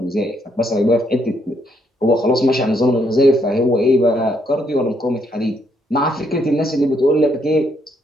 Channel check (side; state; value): both; normal; correlation 0.73